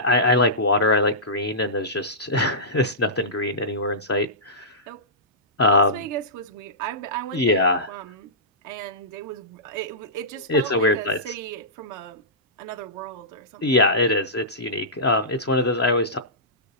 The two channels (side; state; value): both; normal; correlation -0.18